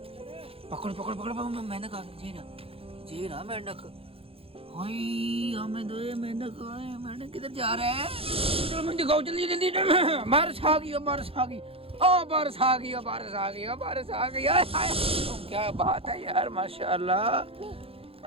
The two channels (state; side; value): late; left; 0.27 ms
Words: पकड़ पकड़ पकड़ पकड़, मेंढक आ गया। जी ना मेंढक। हाय हमें दो मेंढक। मेंढक किधर जा रहा है? चलो मुझे दिखाओ जल्दी जल्दी। बारिश आ गई, बारिश आ गई। ओ बारिश आ गई, बारिश आ गई, बारिश आ गई। क्या बात है यार,